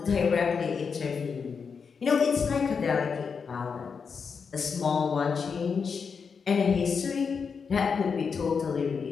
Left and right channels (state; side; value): quieter; right; 5.8 dB